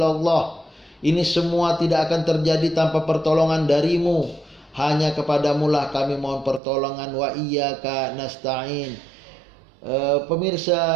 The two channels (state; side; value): drops out; left; at 6.6 s